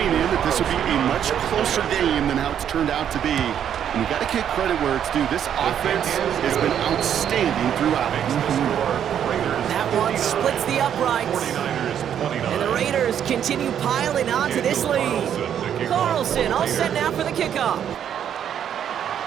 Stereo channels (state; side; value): quieter; left; 9.3 dB